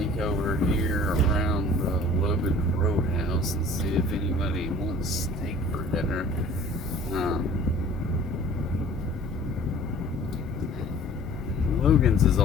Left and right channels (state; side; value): normal; both; correlation 0.48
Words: over here around the Logan Roadhouse and see if anybody wants steak for dinner. Logan's is